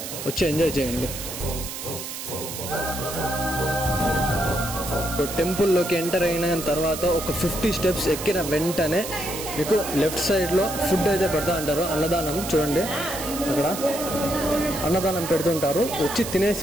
వచ్చి ఎంజాయ్ చేయండి. టెంపుల్లోకి ఎంటర్ అయిన తర్వాత ఒక 50 స్టెప్స్ ఎక్కిన వెంటనే మీకు లెఫ్ట్ సైడ్లో ఫుడ్ అయితే పెడతా అంటారు. అన్నదానం చూడండి, అక్కడ అన్నదానం పెడుతుంటారు. వచ్చి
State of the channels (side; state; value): right; noise; hiss, 8 dB below the sound